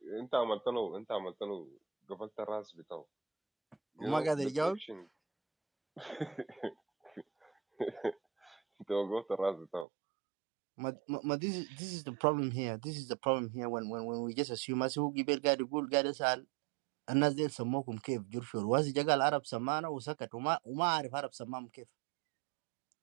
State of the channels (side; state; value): left; drops out; at 9.9 s